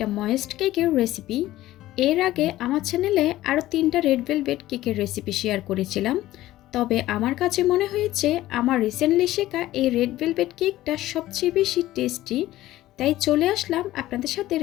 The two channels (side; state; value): right; quieter; 15.5 dB